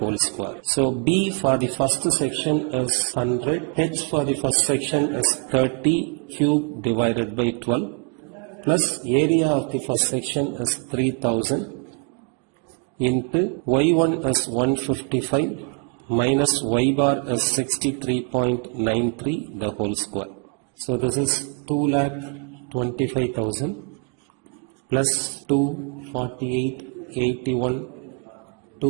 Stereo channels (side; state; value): left; quieter; 37.0 dB